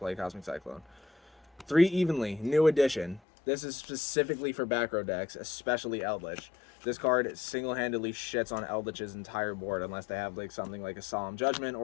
Cosmic Cyclone. 3 Evenly, new edition. This is specifically for back row decks, especially Eldritch. This card single-handedly shits on Eldritch's entire board unless they have like something like a Solemn Judgment,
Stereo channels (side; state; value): right; drops out; at 3.2 s